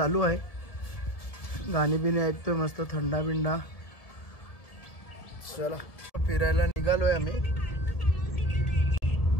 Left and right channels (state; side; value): late; right; 1.7 ms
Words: आहे, गाणी बिणी ऐकतोय मस्त, थंडा बिंडा. चला फिरायला निघालोय आम्ही.